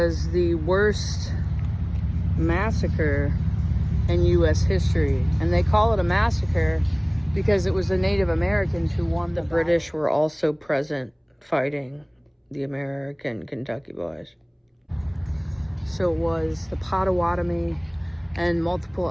the worst massacre in U.S. history. And they call it a massacre because it was the Native Americans who won the battle. The British were also present fighting the American Kentucky boys. So it was the Potawatomi and multiple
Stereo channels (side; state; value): both; identical; correlation 1.00